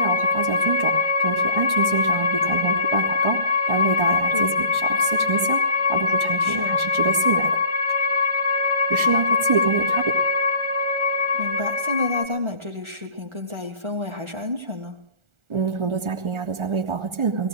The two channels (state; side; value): late; left; 1.4 ms